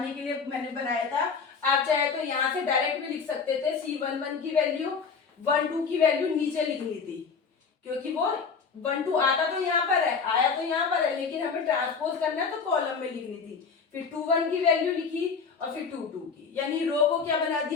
के लिए मैंने बनाया था। आप चाहे तो यहाँ से डायरेक्ट भी लिख सकते थे, C11 की वैल्यू 1 2 की वैल्यू नीचे लिखनी थी, क्योंकि वो 1 2 आता तो यहाँ पर है, आया तो यहाँ पर है, लेकिन हमें ट्रांसपोज करना है तो कॉलम में लिखनी थी। फिर 2 1 की वैल्यू लिखी और फिर 2 2 की, यानी रो को क्या बना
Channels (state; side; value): quieter; right; 5.5 dB